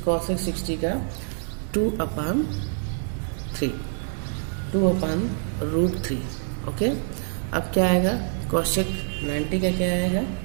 कौशिक 60 का 2/3 2/√3। ओके, अब क्या आएगा, कौशिक 90 का क्या आएगा,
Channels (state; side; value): silent; left; 61 dB below the other